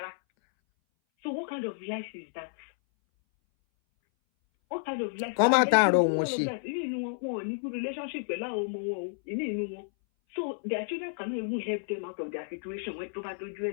what kind of life is that? What kind of life? Come out and run one good relationship. So their children cannot even help them out of their situation when to do.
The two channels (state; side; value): silent; right; 57 dB below the other